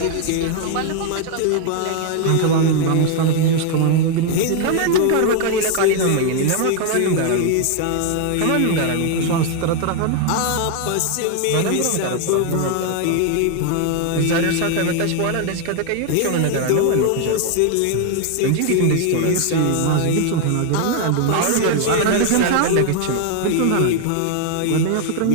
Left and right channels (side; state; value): both; different; correlation 0.01